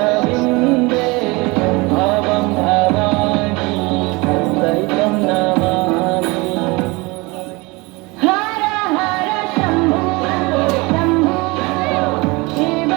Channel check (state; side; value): quieter; left; 25.0 dB